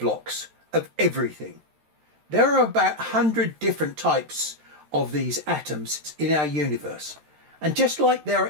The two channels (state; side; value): late; left; 13 ms